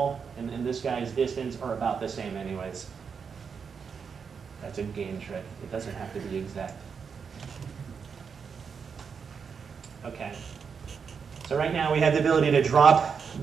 and this guy's distance are about the same anyways. That's a game trick. It doesn't have to be exact. Okay. So right now we have the ability to drop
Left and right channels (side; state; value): left; quieter; 6.2 dB